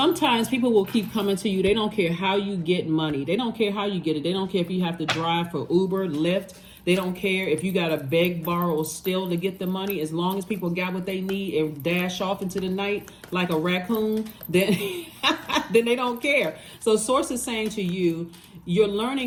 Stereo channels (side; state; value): both; identical; correlation 1.00